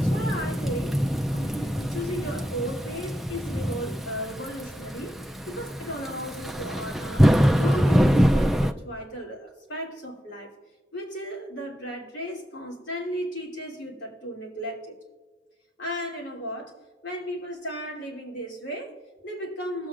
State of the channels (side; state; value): both; normal; correlation 0.84